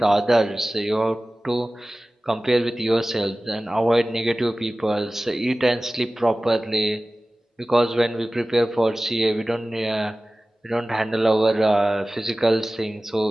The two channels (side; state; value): both; normal; correlation 0.97